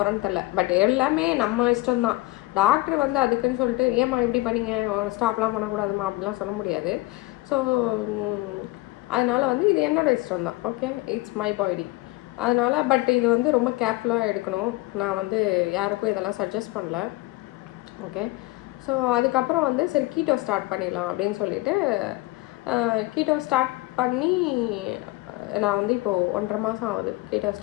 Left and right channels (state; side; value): quieter; right; 20.6 dB